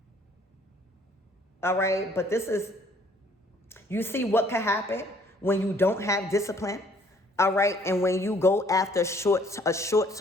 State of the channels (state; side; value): normal; both; correlation 0.61